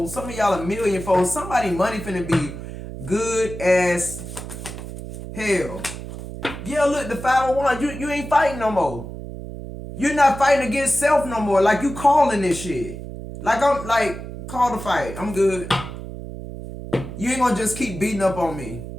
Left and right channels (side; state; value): right; noise; hum, 10 dB below the sound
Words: Some of y'all 1,000,000-fold. Somebody money finna be good as hell. Yeah, look, the 501, you ain't fighting no more. You're not fighting against self no more. Like, you calling this shit. Call the fight. I'm good. You ain't gonna just keep beating up on me.